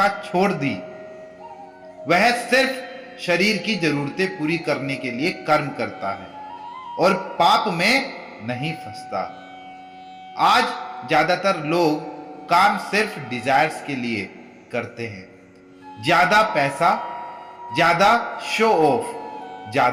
छोड़ दी, वह सिर्फ शरीर की जरूरतें पूरी करने के लिए कर्म करता है और पाप में नहीं फंसता। आज ज्यादातर लोग काम सिर्फ डिजायर्स के लिए करते हैं। ज्यादा पैसा, ज्यादा शो ऑफ,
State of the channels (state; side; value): identical; both; correlation 1.00